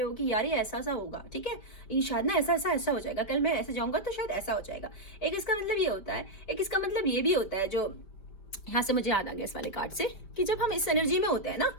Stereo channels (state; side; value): late; right; 5.2 ms